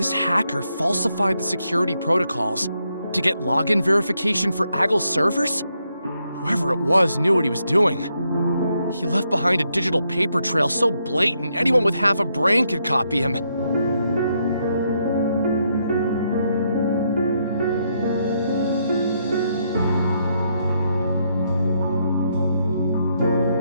hacker falsified the security protocols to get login verification for Agile's servers? Whoever it was knew what he was doing. He left behind a digital paper trail so blatant anyone with half a brain could copy him.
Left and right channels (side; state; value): both; inverted; correlation -0.78